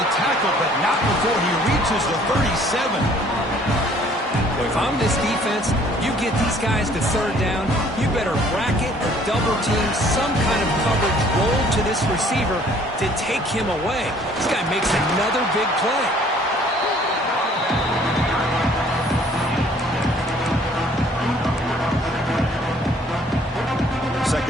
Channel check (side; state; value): both; normal; correlation 0.58